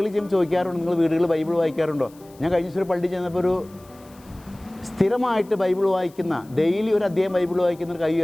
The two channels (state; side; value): noise; left; hiss, 27 dB below the sound